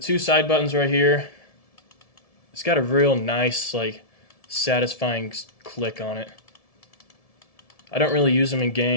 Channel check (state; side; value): late; right; 1.7 ms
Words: side buttons right here, it's got a real nice, like, satisfying click on it. I don't really use them in